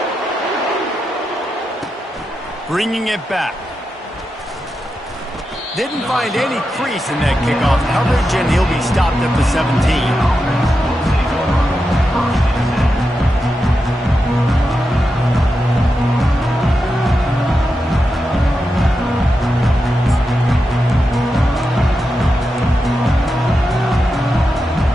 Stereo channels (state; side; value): normal; both; correlation 0.88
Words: Bringing it back. Didn't find any crease in that kickoff coverage, and he'll be stopped at the 17.